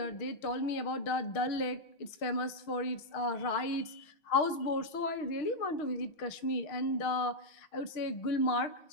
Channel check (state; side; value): late; right; 6.4 ms